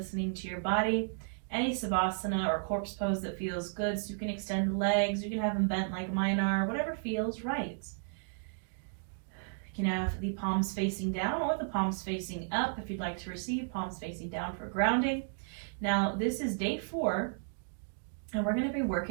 to your body. Any Savasana or corpse pose that feels good, so you can extend the legs, you can have them bent like mine are, whatever feels right. You can have the palms facing down or the palms facing up if you'd like to receive, palms facing down for grounding. Now, this is day 4, and we're going to be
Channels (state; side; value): silent; left; digital silence